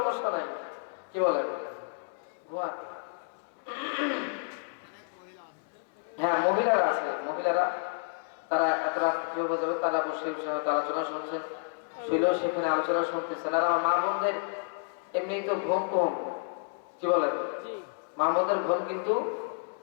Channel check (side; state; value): right; silent; digital silence